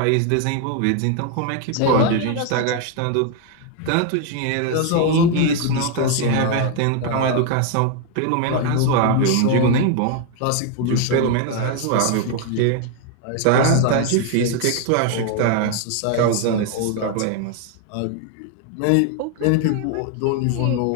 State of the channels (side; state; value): both; different; correlation 0.01